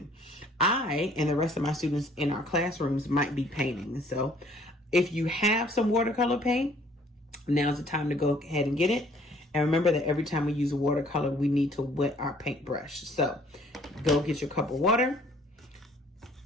I and the rest of my students in our classrooms might be painting. So if you have some watercolor paint, now's the time to go ahead and get it. And remember that every time we use a watercolor, we need to wet our paintbrush. So go get your cup of water.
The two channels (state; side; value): normal; both; correlation 0.59